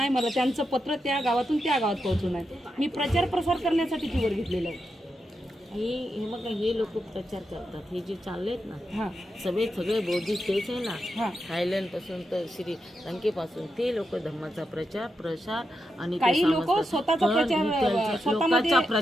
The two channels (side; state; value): both; normal; correlation 0.86